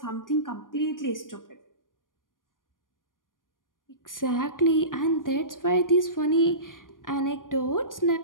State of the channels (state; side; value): late; right; 0.90 ms